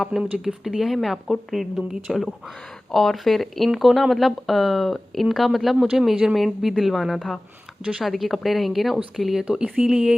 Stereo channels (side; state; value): both; normal; correlation 0.98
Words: आपने मुझे गिफ्ट दिया है, मैं आपको ट्रीट दूँगी, चलो। और फिर इनको ना मतलब इनका मतलब मुझे मेजरमेंट भी दिलवाना था, जो शादी के कपड़े रहेंगे ना उसके लिए, तो